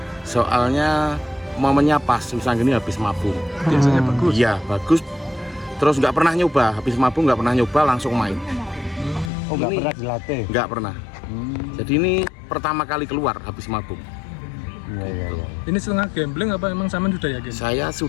Soalnya momennya pas Wisang Geni habis mabung. Biasanya bagus. Iya bagus. Terus nggak pernah nyoba, habis mabung nggak pernah nyoba langsung main. Oh nggak pernah dilatih? Nggak pernah. Jadi ini pertama kali keluar habis mabung. Iya. Ini setengah gambling apa emang sampean sudah yakin? Saya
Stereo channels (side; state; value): right; drops out; at 9.3 s